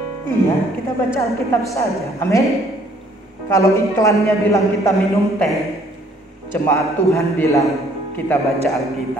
Iya, kita baca Alkitab saja. Amin. Kalau iklannya bilang kita minum teh, jemaat Tuhan bilang kita baca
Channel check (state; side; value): normal; both; correlation 0.61